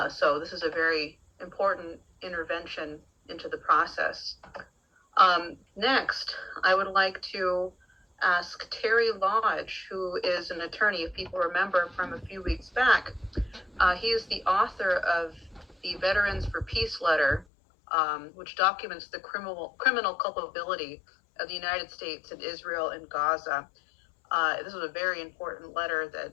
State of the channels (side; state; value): right; drops out; at 17.4 s